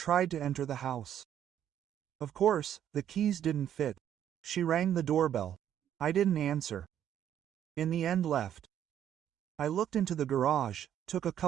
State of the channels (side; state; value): left; quieter; 10.2 dB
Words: to enter the house. Of course, the keys didn't fit. She rang the doorbell. I didn't answer. In the end left. I looked into the garage, took a